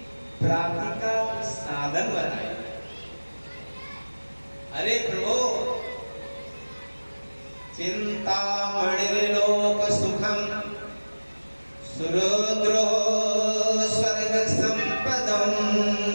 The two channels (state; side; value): inverted; both; correlation -1.00